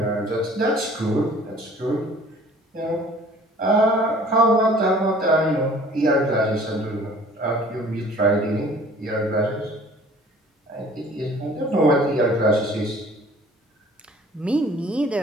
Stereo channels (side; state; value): both; normal; correlation 0.51